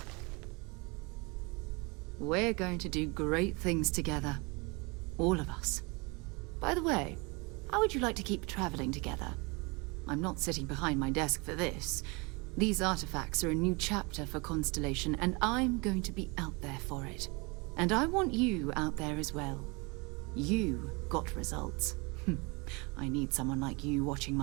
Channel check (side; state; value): left; quieter; 28.5 dB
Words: We're going to do great things together. All of us. By the way, how would you like to keep traveling together? I'm not sitting behind my desk for this. These artifacts are a new chapter for Constellation, and I'm going to be out there for it. And I want you out there as well. You got results. I need someone like you watching